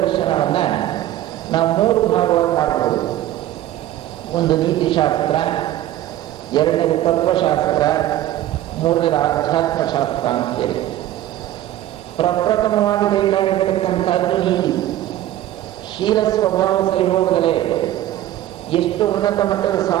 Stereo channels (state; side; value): quieter; left; 13.4 dB